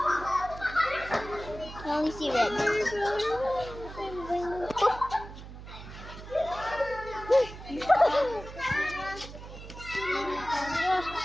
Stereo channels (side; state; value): right; noise; hum, 13 dB below the sound